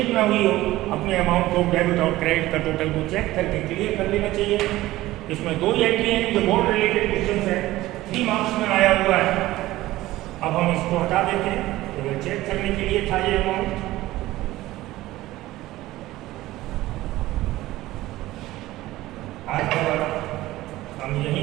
ना हुई हो, अपने अमाउंट को डेबिट और क्रेडिट का टोटल को चेक करके क्लियर कर लेना चाहिए। इसमें 2 एंट्री हैं जो बोर्ड रिलेटेड क्वेश्चन है, 3 मार्क्स में आया हुआ है। अब हम इसको हटा देते हैं, तो चेक करने के लिए था ये अमाउंट। आज का हम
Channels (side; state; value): left; quieter; 16.8 dB